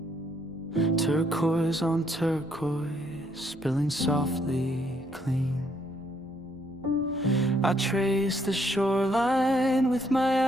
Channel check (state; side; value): noise; left; rumble, 26 dB below the sound